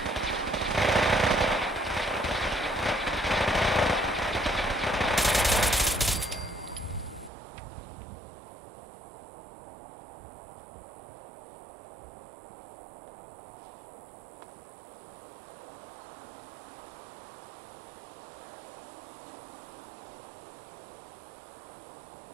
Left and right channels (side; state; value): left; drops out; at 7.3 s